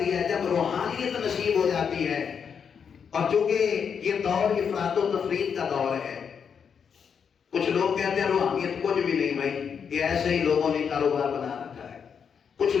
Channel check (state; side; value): quieter; right; 6.9 dB